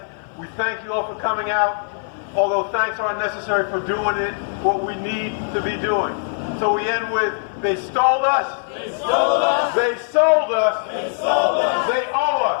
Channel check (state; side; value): silent; right; 57 dB below the other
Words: We thank you all for coming out. Although thanks aren't necessary for doing it, what we need to be doing. So we end with, they stole us. They stole us. They sold us. They sold us. They